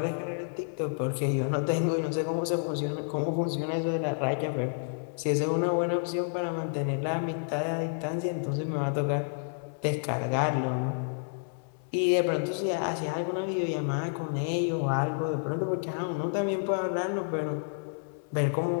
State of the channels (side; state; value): right; silent; 58 dB below the other